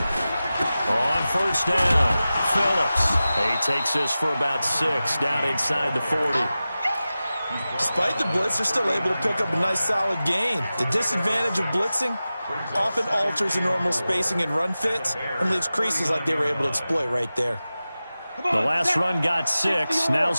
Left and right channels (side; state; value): both; inverted; correlation -0.95